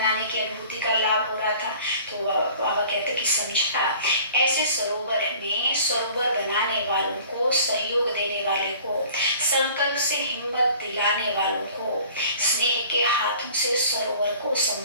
की अनुभूति का लाभ हो रहा था। तो बाबा कहते कि समझता ऐसे सरोवर में सरोवर बनाने वालों को, सहयोग देने वाले को, संकल्प से हिम्मत दिलाने वालों को, स्नेह के हाथों से सरोवर को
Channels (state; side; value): inverted; both; correlation -0.48